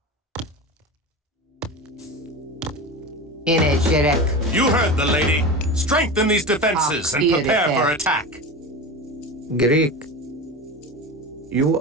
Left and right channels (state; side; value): normal; both; correlation 0.27